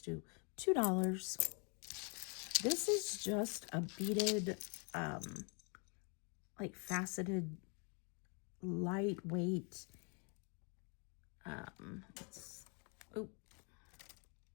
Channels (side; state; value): right; quieter; 36.5 dB